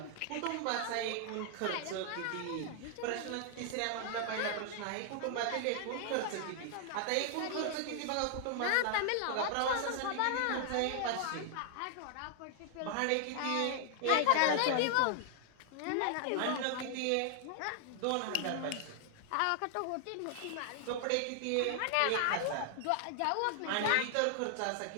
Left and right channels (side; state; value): both; different; correlation 0.00